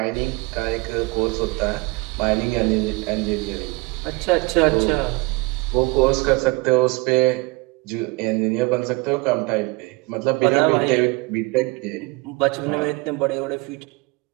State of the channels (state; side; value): quieter; left; 25.8 dB